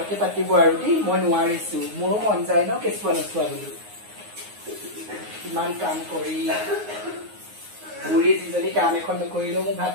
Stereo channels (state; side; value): late; left; 9.6 ms